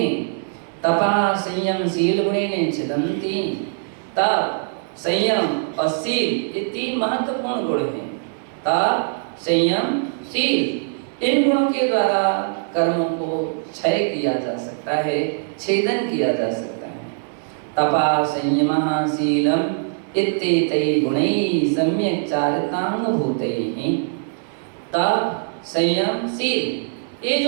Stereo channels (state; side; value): silent; left; digital silence